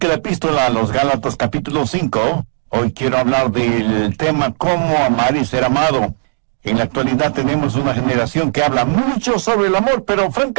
la epístola a los Gálatas capítulo 5. Hoy quiero hablar del tema Cómo amar y ser amado. En la actualidad tenemos una generación que habla mucho sobre el amor, pero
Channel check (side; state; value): left; silent; digital silence